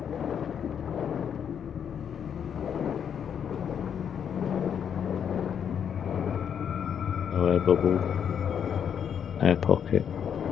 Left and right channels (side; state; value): right; quieter; 8.1 dB